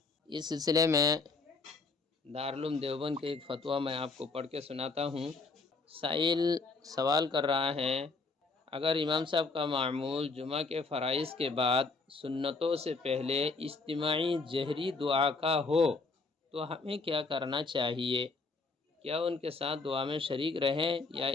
اس سلسلے میں دارالعلوم دیوبند کے ایک فتویٰ میں آپ کو پڑھ کے سناتا ہوں۔ سائل سوال کر رہا ہے، اگر امام صاحب کا معمول جمعہ کے فرائض کے بعد سنتوں سے پہلے اجتماعی جہری دعا کا ہو تو ہمیں کیا کرنا چاہیے؟ کیا ان کے ساتھ دعا میں شریک رہیں یا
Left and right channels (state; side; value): quieter; right; 4.0 dB